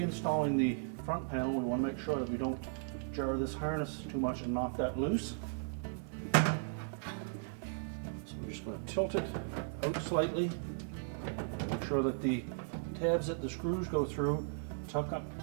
the front panel, we want to make sure that we don't jar this harness too much and knock that loose. So we're just going to tilt it out slightly, make sure that the tabs that the screws go through tuck up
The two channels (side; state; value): left; silent; digital silence